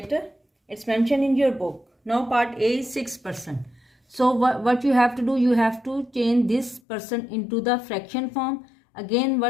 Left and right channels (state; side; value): drops out; right; at 6.8 s